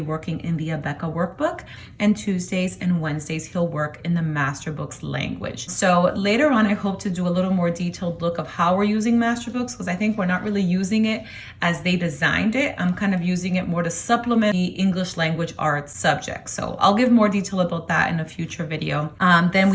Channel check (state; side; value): identical; both; correlation 1.00